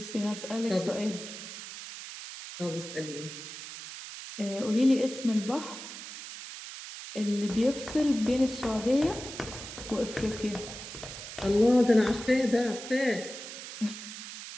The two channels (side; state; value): right; noise; hiss, 11 dB below the sound